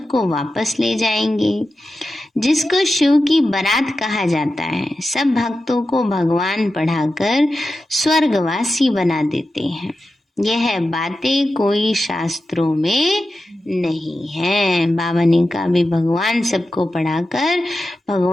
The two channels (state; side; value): normal; both; correlation 0.91